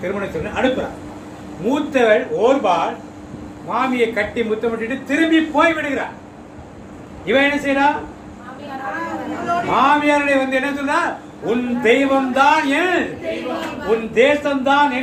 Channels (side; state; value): both; identical; correlation 1.00